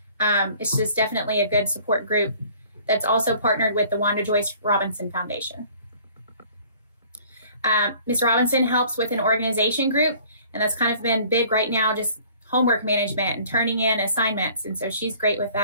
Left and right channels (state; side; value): inverted; both; correlation -0.53